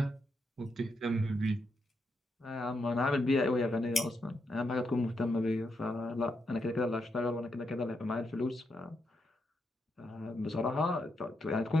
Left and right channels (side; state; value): both; normal; correlation 0.82